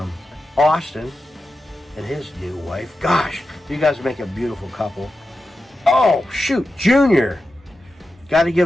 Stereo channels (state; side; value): normal; both; correlation 0.91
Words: Austin and his new wife. Gosh, you guys make a beautiful couple. Oh, shoot, Junior. Got to